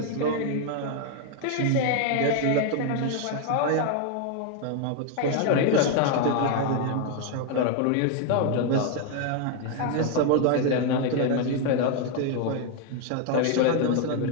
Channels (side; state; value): both; different; correlation 0.00